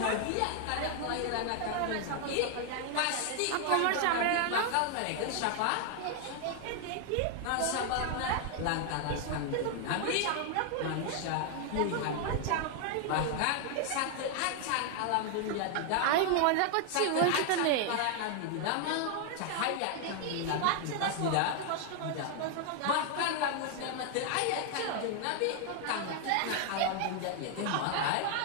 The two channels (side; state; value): both; different; correlation 0.00